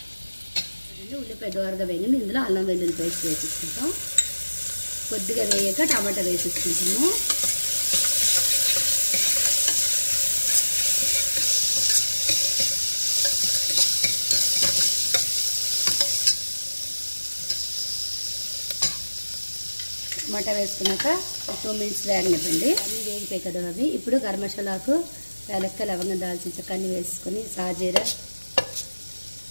చూడండి, ఉల్లిపాయ దోరగా వేగింది। ఇందులో అల్లం వెల్లుల్లి పేస్ట్ వేసుకుంటాం। కొద్దిగా వేయక టమాటా వేసేసుకుంటాము। టమాటా వేసుకున్నాక 2 మినిట్స్ వేగనివ్వండి। అన్నీ వేగిపోయి కదా అవి। ఇప్పుడు గరం మసాలాకు, ఏలక్కాయ, లవంగం, దాల్చిన చెక్క అన్నీ వేసుకొని, సాజీరా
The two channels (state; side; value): inverted; both; correlation -1.00